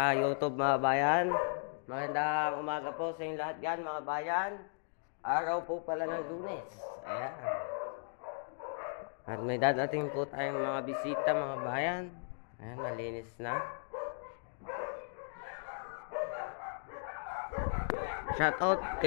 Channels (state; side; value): silent; right; digital silence